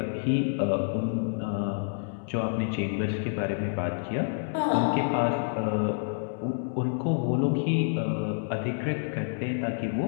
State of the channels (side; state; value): right; silent; 59 dB below the other